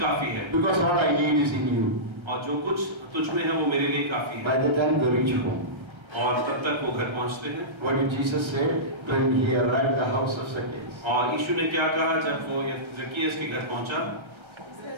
है। Because all I need is in you. और जो कुछ तुझ में है वो मेरे लिए काफी है। By the time they reach home, और तब तक वो घर पहुंचते हैं। what did Jesus say when he arrived at the house of Zacchaeus? और यीशु ने क्या कहा जब वो ज़क्केयस के घर पहुंचा?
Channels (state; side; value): late; left; 1.3 ms